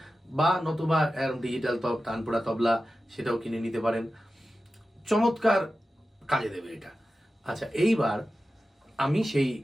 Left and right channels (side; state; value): both; normal; correlation 0.93